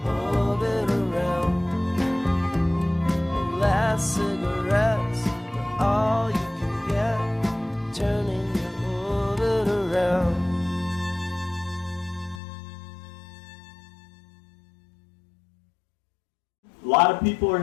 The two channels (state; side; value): drops out; right; at 12.4 s